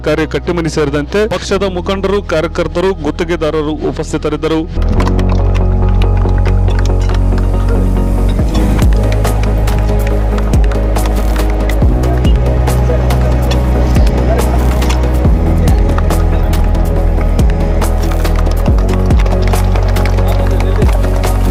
ಕಟ್ಟಿಮನಿ ಸೇರಿದಂತೆ ಪಕ್ಷದ ಮುಖಂಡರು, ಕಾರ್ಯಕರ್ತರು, ಗುತ್ತಿಗೆದಾರರು ಉಪಸ್ಥಿತರಿದ್ದರು.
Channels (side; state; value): both; identical; correlation 1.00